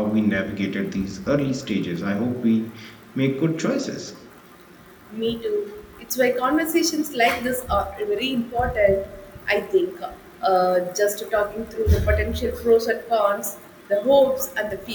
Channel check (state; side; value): identical; both; correlation 1.00